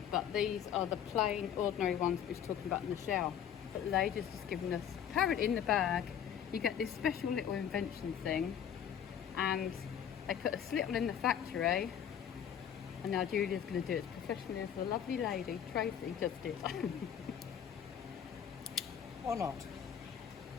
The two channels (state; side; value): quieter; right; 8.9 dB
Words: but these are the plain, ordinary ones we were talking about in the shower. But the lady's just given us, apparently in the bag, you get this special little invention thing, and they put a slittle in the factory, and now Julia's going to do it as professionally as the lovely lady, Tracy, just did. Or not.